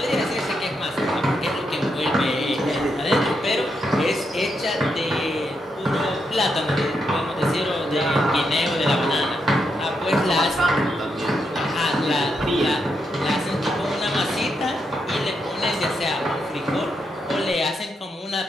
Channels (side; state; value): both; normal; correlation 0.82